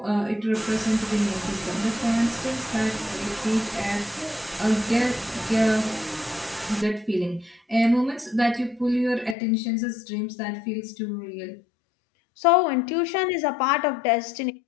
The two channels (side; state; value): right; drops out; at 9.3 s